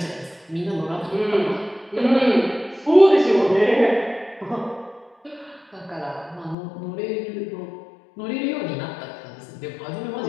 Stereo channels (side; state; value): right; drops out; at 6.6 s